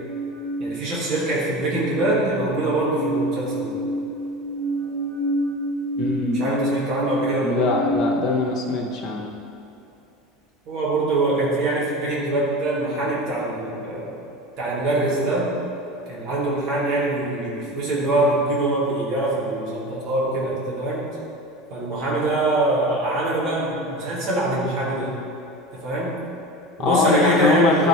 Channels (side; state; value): both; normal; correlation 0.32